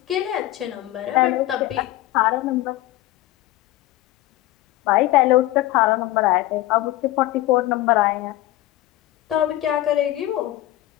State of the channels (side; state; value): right; quieter; 15.8 dB